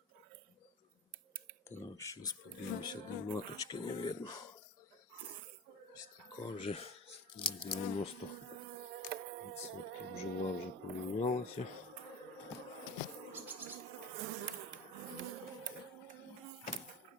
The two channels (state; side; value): normal; both; correlation 0.31